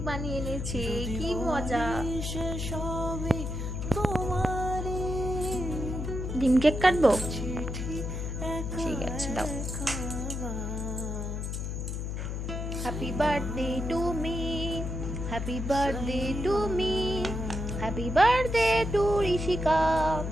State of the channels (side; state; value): left; noise; hum, 4 dB below the sound